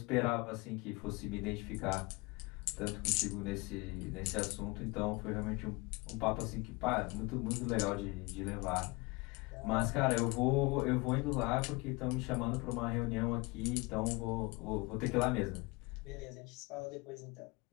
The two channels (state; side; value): quieter; right; 25.3 dB